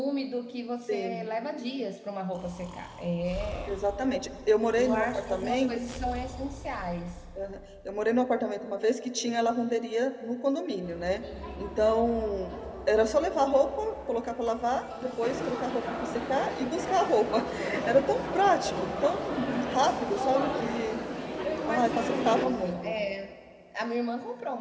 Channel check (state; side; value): identical; both; correlation 1.00